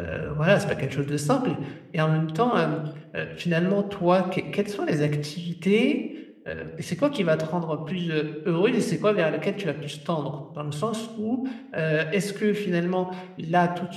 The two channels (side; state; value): both; identical; correlation 1.00